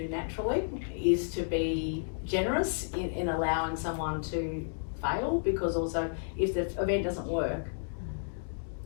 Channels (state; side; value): silent; right; digital silence